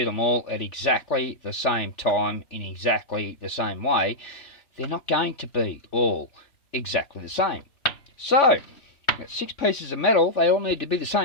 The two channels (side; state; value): right; late; 3.4 ms